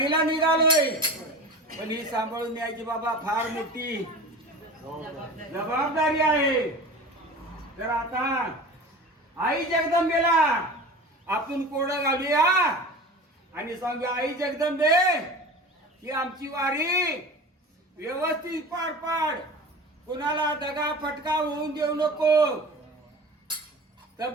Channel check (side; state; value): both; normal; correlation 0.35